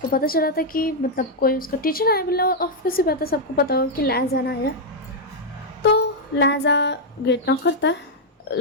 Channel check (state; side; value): normal; both; correlation -0.03